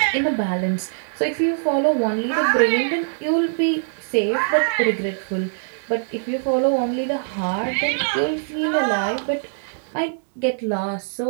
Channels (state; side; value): silent; left; digital silence